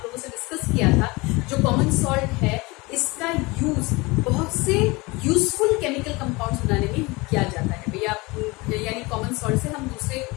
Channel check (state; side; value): quieter; right; 24.1 dB